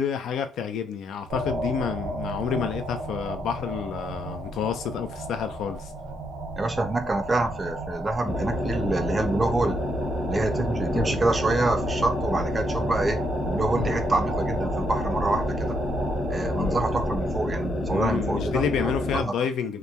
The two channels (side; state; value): both; normal; correlation 0.76